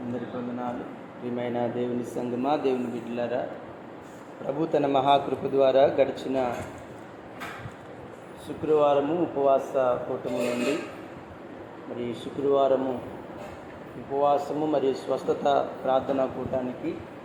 ప్రియమైన దేవుని సంగమా, దేవుని బిడ్డలారా, ప్రభు తన మహాకృప ద్వారా గడిచిన శుక్రవారము ఉపవాస కూటమి నుండి మరి శుక్రవారము ఉపవాసము మరియు స్వస్థత ప్రార్థనా కూటానికి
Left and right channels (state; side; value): identical; both; correlation 1.00